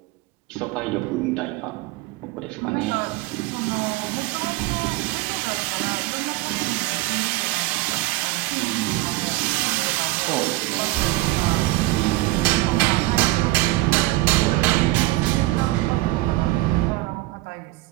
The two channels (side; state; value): left; quieter; 19.4 dB